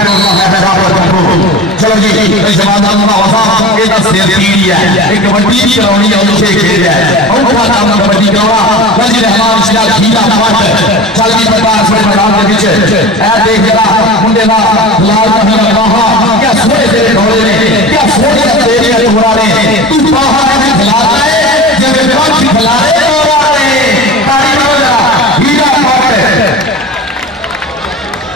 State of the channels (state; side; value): normal; both; correlation 0.33